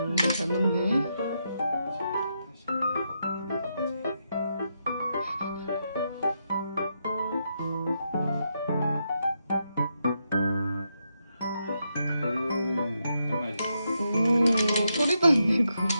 잘 맞네. 오, 소리도 안 내고.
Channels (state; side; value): inverted; both; correlation -0.82